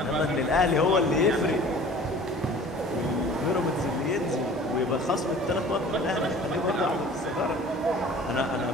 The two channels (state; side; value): normal; both; correlation 0.45